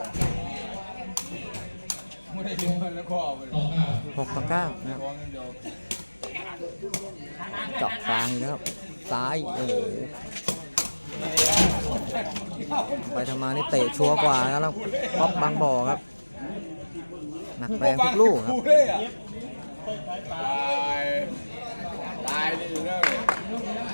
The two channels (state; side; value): inverted; both; correlation -1.00